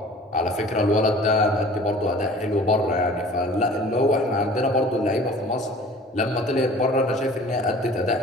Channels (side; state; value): both; normal; correlation 0.46